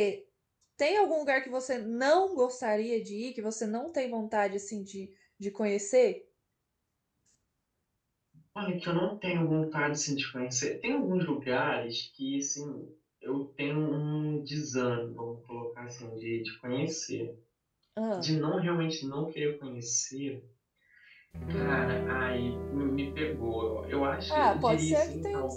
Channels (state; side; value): identical; both; correlation 1.00